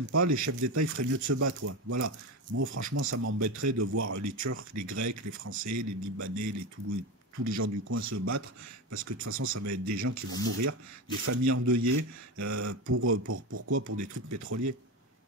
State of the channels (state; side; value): normal; both; correlation 0.19